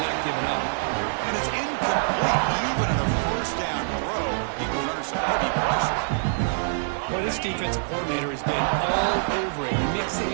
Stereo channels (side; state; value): left; silent; digital silence